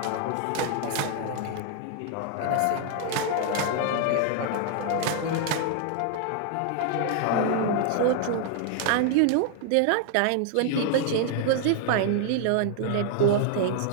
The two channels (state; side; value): different; both; correlation 0.00